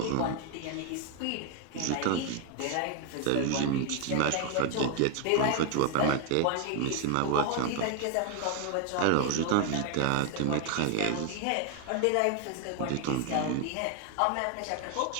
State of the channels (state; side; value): different; both; correlation 0.00